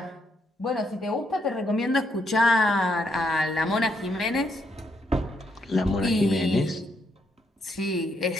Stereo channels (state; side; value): normal; both; correlation 0.76